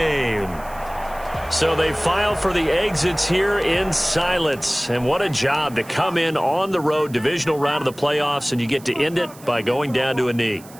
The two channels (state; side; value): noise; right; hiss, 21 dB below the sound